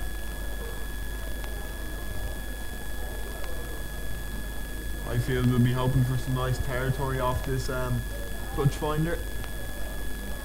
Highfield will be hoping for some nice territory off this touch finder.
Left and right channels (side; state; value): both; identical; correlation 1.00